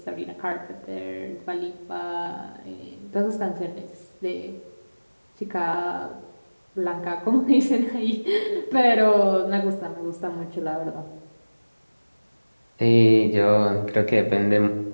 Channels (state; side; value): inverted; both; correlation -1.00